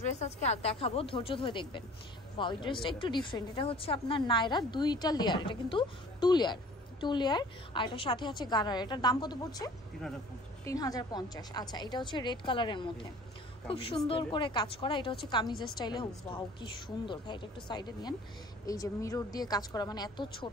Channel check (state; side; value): normal; both; correlation 0.48